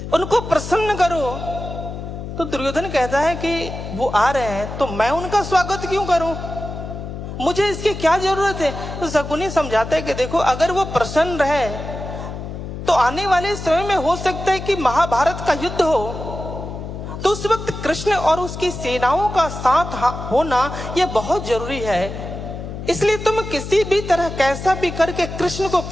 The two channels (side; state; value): left; noise; hum, 8 dB below the sound